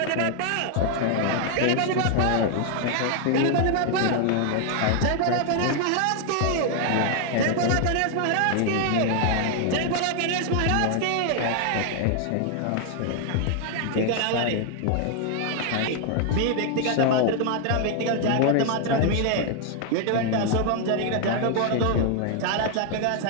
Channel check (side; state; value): both; different; correlation 0.00